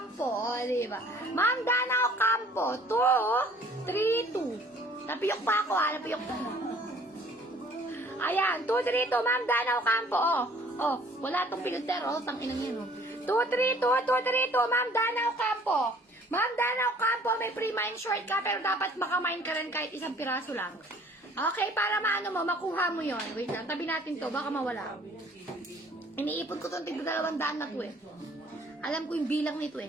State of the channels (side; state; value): both; normal; correlation 0.55